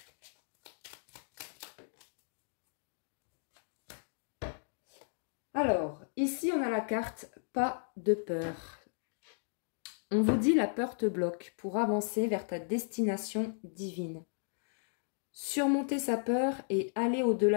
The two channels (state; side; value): silent; right; digital silence